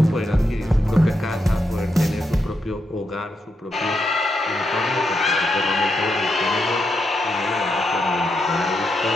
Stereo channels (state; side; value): normal; both; correlation 0.83